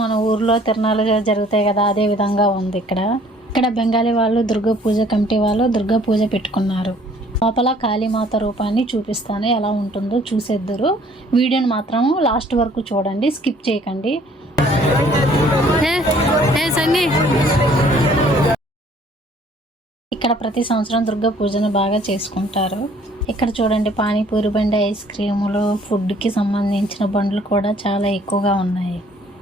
మన ఊర్లో తిరణాలు జరుగుతాయి కదా, అదే విధంగా ఉంది. ఇక్కడ బెంగాలీ వాళ్ళు దుర్గా పూజ కమిటీ వాళ్ళు దుర్గా పూజ పెట్టుకున్నారు. లోపల కాళీమాత రూపాన్ని చూపిస్తాను, ఎలా ఉంటుందో చూసేద్దరు. వీడియోని మాత్రం లాస్ట్ వరకు చూడండి, స్కిప్ చేయకండి. ఇక్కడ ప్రతి సంవత్సరం దుర్గా పూజను బాగా చేసుకుంటారు. ఇక్కడ చూడండి, పానీపూరి బండి, ఐస్ క్రీములు, ఫుడ్కి సంబంధించిన బండ్లు కూడా చాలా ఎక్కువగా ఉన్నాయి.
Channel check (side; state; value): both; normal; correlation 0.58